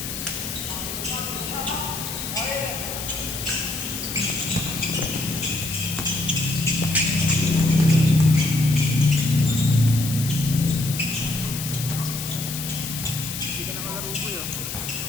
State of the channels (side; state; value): left; noise; hiss, 6 dB below the sound